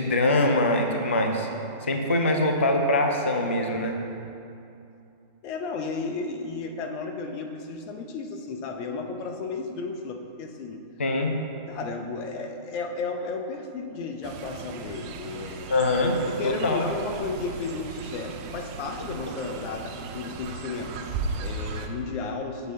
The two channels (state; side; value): inverted; both; correlation -0.36